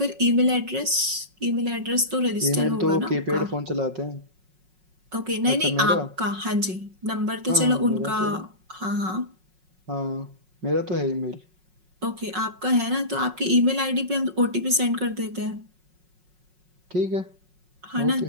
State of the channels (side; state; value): left; late; 5.4 ms